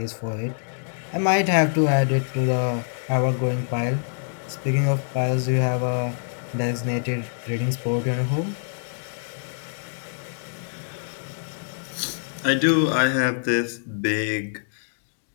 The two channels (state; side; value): silent; right; digital silence